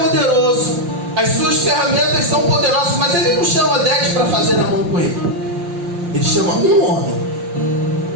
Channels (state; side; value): late; left; 5.7 ms